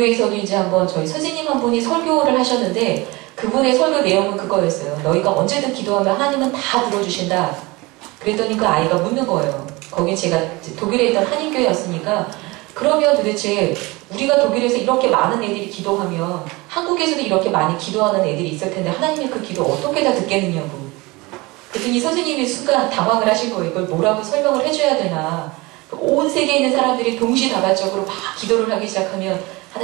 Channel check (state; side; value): quieter; left; 23.4 dB